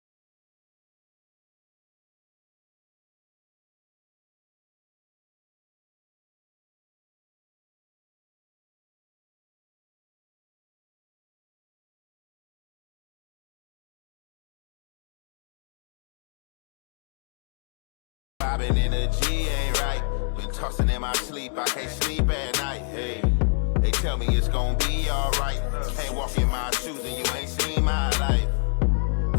Vibing energy ain't right. Been tossing in my sleep, I can't sleep at night. Hey, they tell me it's gonna be alright. Can't walk in my shoes and you ain't seen my life.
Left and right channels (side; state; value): right; silent; 58 dB below the other